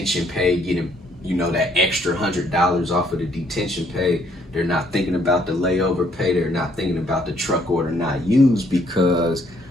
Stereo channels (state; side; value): normal; both; correlation 0.67